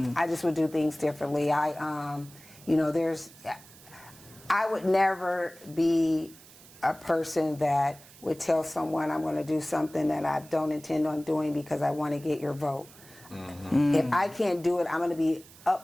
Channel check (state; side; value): noise; right; hiss, 22 dB below the sound